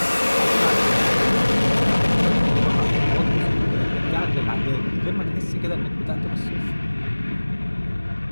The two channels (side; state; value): both; inverted; correlation -1.00